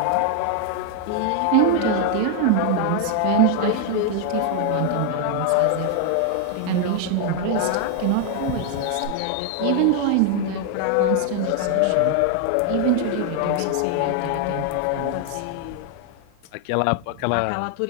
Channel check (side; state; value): both; different; correlation 0.00